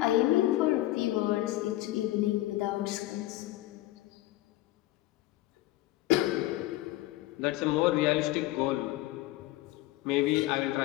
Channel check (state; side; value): quieter; right; 16.5 dB